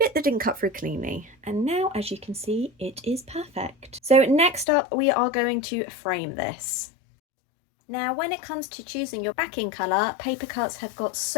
that didn't cut through cleanly. And now, as you can see, it is perfect. So next up we are going to frame this. Now, when it comes to choosing your backing colour, Paper Cutz have got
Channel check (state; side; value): drops out; right; at 4.7 s